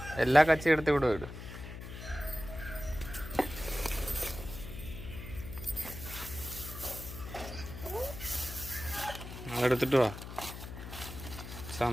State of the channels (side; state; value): left; noise; hum, 10 dB below the sound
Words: എല്ലാ കച്ചി എടുത്ത് ഇവിടെ വിടും. എടുത്തിട്ട് വാ.